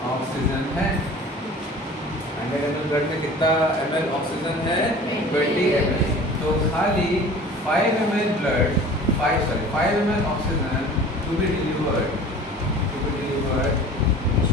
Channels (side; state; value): both; normal; correlation 0.43